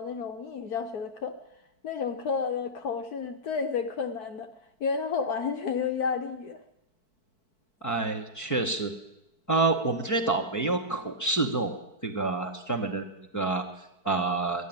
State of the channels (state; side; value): late; right; 4.6 ms